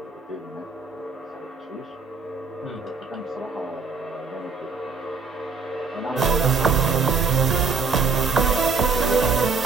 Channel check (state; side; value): quieter; left; 4.9 dB